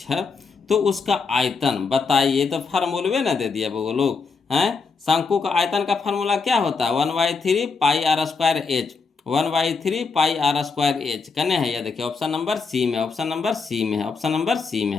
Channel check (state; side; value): quieter; right; 4.9 dB